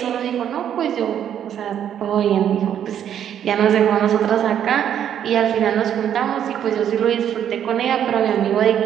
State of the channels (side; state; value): left; quieter; 9.6 dB